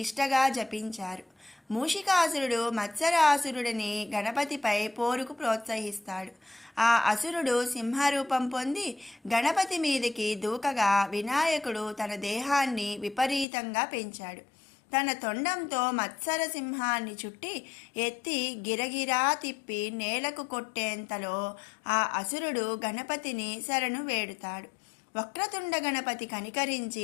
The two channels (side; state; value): right; drops out; at 13.5 s